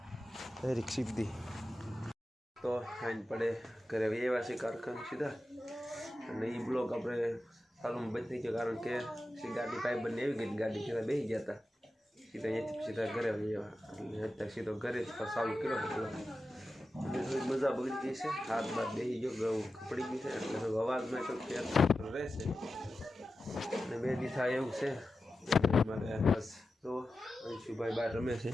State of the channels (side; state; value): both; normal; correlation 0.92